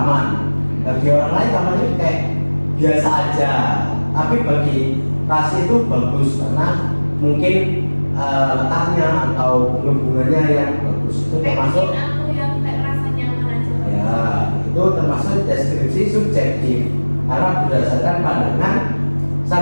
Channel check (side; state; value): both; inverted; correlation -1.00